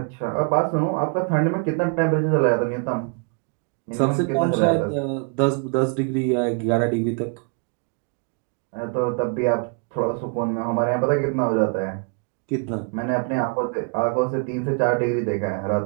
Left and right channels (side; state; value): left; quieter; 38.5 dB